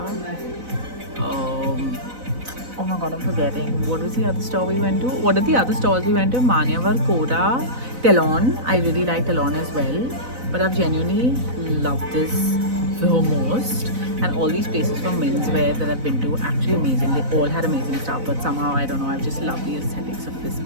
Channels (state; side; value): late; left; 4.0 ms